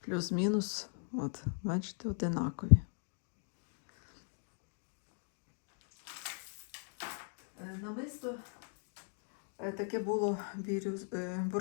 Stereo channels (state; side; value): silent; right; 52 dB below the other